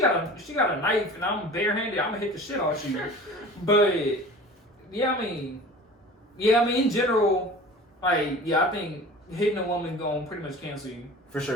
a knife and I'm barehanded, I'm gonna hit the shit out of you. But I mean, in general, I think hitting a woman gonna pretty much cancel you. For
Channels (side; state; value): both; normal; correlation 0.40